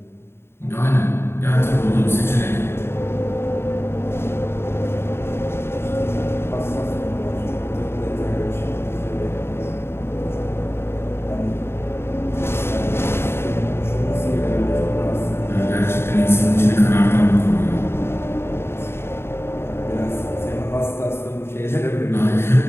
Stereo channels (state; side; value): late; right; 0.12 ms